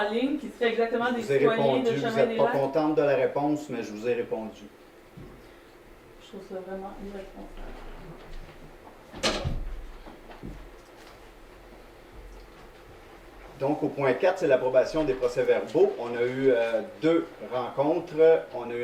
ligne, qui serait exactement des Je vous ai citoyens répondu, de vous chemin n'êtes des pas Lacs? contente de la réponse, mais je vous ai répondu. Je trouve ça vraiment irresponsable. Donc, au point 4, c'est l'approbation des procès-verbaux. On a eu deux rencontres. On a eu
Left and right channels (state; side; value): identical; both; correlation 1.00